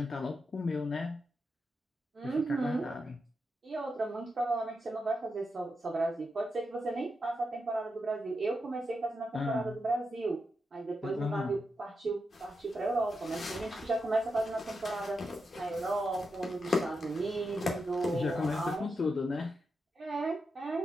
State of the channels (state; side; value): normal; both; correlation 0.86